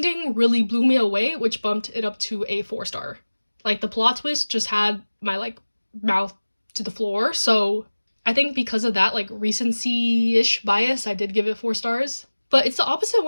really blew me away, which bumped it up to a 4 star. Like, the plot twist just had my like mouth to the floor. So I think because of that like recency-ish bias, I did give it 4 stars. But it's the opposite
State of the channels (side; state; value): both; inverted; correlation -1.00